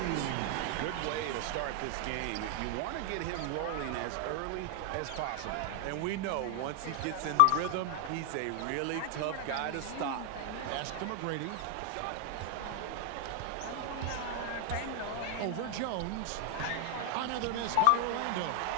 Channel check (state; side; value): different; both; correlation 0.00